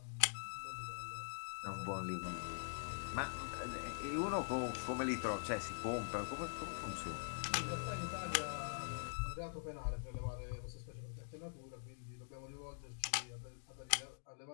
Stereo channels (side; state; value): right; silent; digital silence